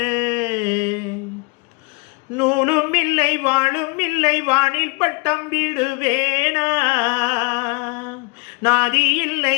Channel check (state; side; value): quieter; right; 29.0 dB